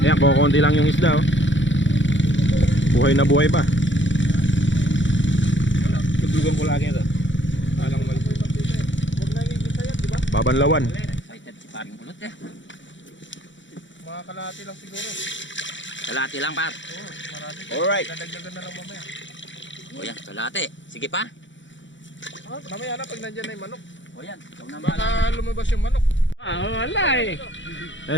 Ayan, kukunti lang yung isda oh. Buhay na buhay pa. Tuglugan ko lagi ito. Alang mali. Babanlawan. Excited si paring Kulot eh. Mga kalahati lang siguro. Kalahati lang par. Marami. Alright. Dadagdagan na lang mamaya. O yan, kalahati. Sige pa. Mamaya na pag nandyan na yung manok. O yan, ikaw na Baka lumabas yung manok. wala eh.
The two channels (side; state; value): right; late; 0.54 ms